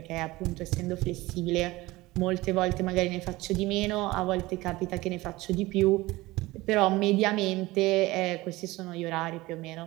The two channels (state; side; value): quieter; left; 19.8 dB